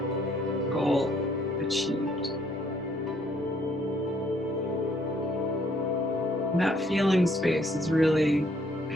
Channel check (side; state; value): both; normal; correlation 0.66